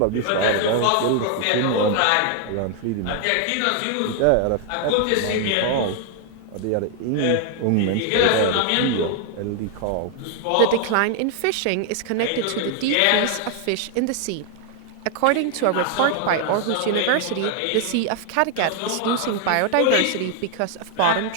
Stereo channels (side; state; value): both; different; correlation 0.00